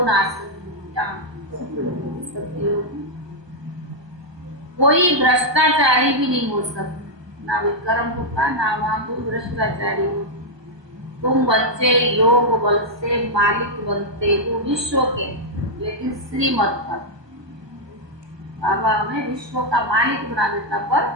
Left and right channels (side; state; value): left; late; 1.2 ms